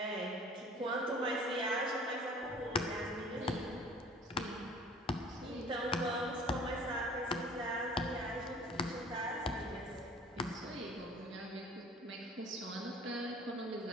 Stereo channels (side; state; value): both; normal; correlation 0.48